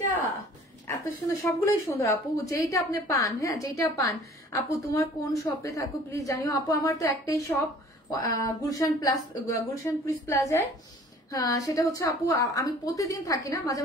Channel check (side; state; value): both; normal; correlation 0.50